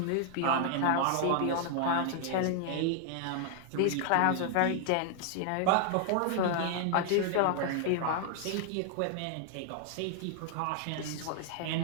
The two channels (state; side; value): different; both; correlation 0.00